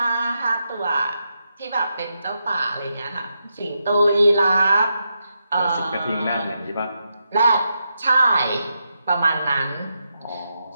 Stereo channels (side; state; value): both; inverted; correlation -0.85